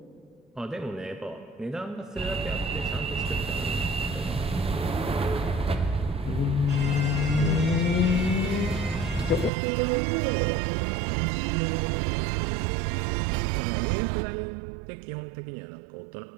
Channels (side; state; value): left; drops out; at 9.5 s